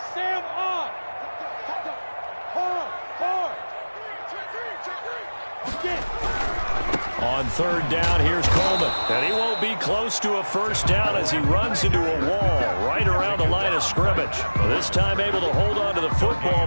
On 3rd down, here's Coleman. And he won't be close to a first down as he runs into a wall right around the line of scrimmage. This time able to hold on to the football,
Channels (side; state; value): both; inverted; correlation -1.00